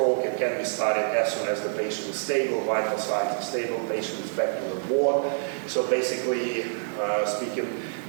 it can be started as soon as the patient is stable, vital signs are stable, patient is back to the ward. So basically, speaking,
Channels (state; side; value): silent; left; digital silence